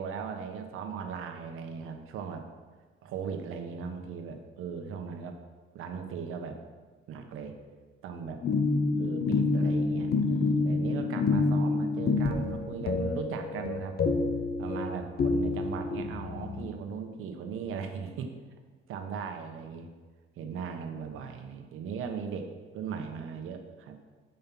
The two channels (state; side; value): normal; both; correlation 0.61